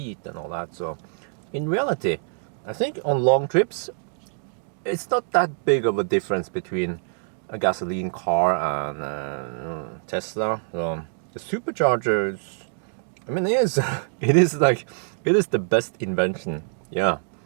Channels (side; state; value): left; silent; digital silence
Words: and all that. So in reality, I think on long trips, it's not that big of a difference between a gasoline car and Tesla. So the superchargers, I mean, it is it is the best invention. Yeah.